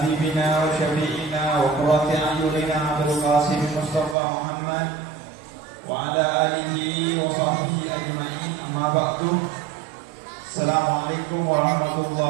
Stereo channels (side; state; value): left; drops out; at 4.2 s